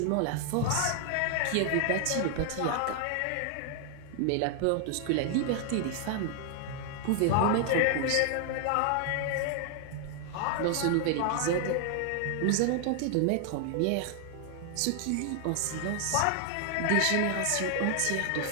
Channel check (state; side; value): different; both; correlation 0.00